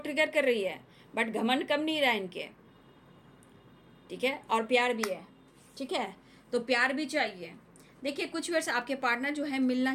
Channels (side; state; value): both; identical; correlation 1.00